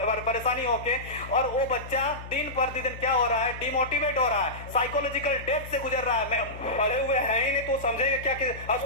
परेशानी होके, और वो बच्चा दिन प्रतिदिन क्या हो रहा है, डिमोटिवेट हो रहा है, साइकोलॉजिकल डेथ से गुजर रहा है। पढ़े हुए हैं ही नहीं तो समझेंगे क्या कि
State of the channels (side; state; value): left; noise; hum, 13 dB below the sound